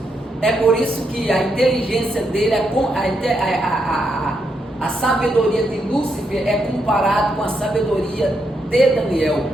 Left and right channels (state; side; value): normal; both; correlation 0.80